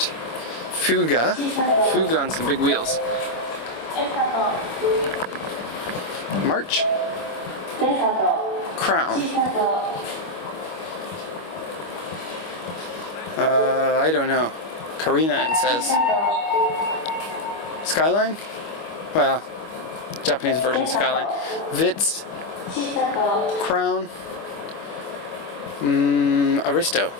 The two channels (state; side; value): late; right; 25 ms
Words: Fuga on some big wheels. March, Crown. I don't know. Karina, it says. Skyline? Well, Japanese version Skyline. Vitz, Crown, Aristo,